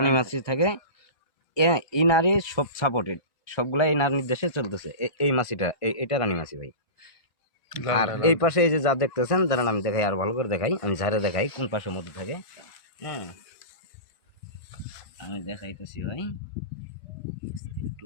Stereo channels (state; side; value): late; right; 1.5 ms